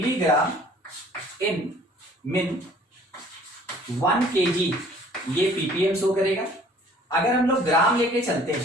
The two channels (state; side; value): normal; both; correlation 0.54